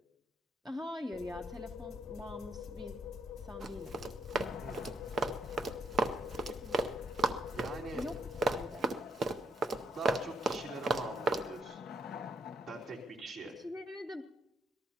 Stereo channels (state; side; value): normal; both; correlation 0.72